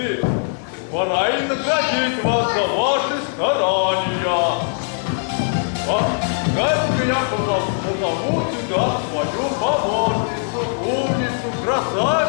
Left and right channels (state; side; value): silent; right; 65 dB below the other